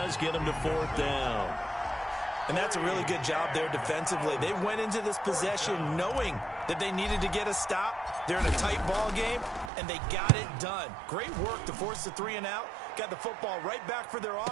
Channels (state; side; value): drops out; left; at 9.7 s